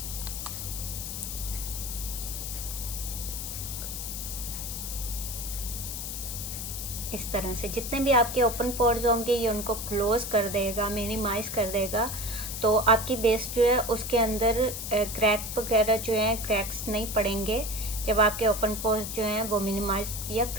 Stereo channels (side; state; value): left; noise; hiss, 6 dB below the sound